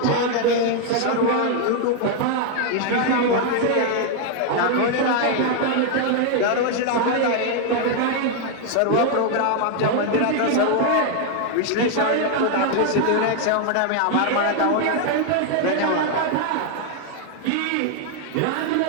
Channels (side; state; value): both; different; correlation 0.00